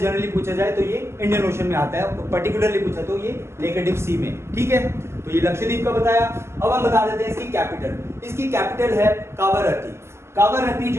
पूछा जाए तो ये इंडियन ओशन में आता है, पर्टिकुलरली पूछा तो ये लेकेडिव सी में, ठीक है। तो ये लक्षद्वीप का बताया। अब हम बता देते हैं इसकी कैपिटल। इसकी कैपिटल है कावारत्ती। कावारत्ती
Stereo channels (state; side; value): late; left; 0.13 ms